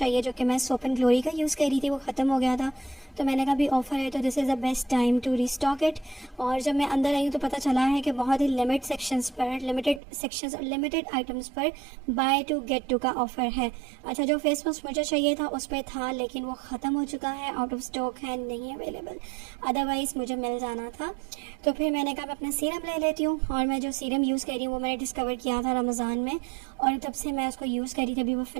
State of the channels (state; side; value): drops out; left; at 10.0 s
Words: जो कि मैं सोप एंड ग्लोरी का यूज़ कर रही थी, वो ख़त्म हो गया था। तो मैंने कहा भी ऑफ़र है तो this is the best time to restock it. और जब मैं अंदर आई हूँ तो पता चला है कि बहुत ही लिमिटेड सेक्शंस और लिमिटेड आइटम्स पर बाय टू गेट टू का ऑफ़र है। अच्छा, जो फेस वॉश मुझे चाहिए था उस पर था, लेकिन वो ख़त्म हो चुका है, आउट ऑफ स्टॉक है, नहीं अवेलेबल, अदरवाइज़ मुझे मिल जाना था। तो फिर मैंने कहा मैं अपना सीरम ले लेती हूँ। और मैं जो सीरम यूज़ कर रही हूँ वो मैंने डिस्कवर किया था रमज़ान में, और तब से मैं उसको यूज़ कर रही थी, अभी वो